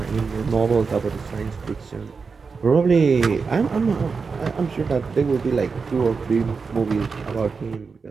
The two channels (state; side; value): quieter; left; 5.0 dB